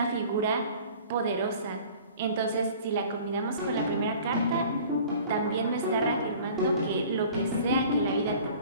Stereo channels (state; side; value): inverted; both; correlation -0.47